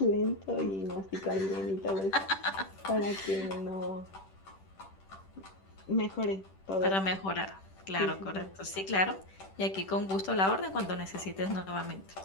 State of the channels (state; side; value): late; right; 10 ms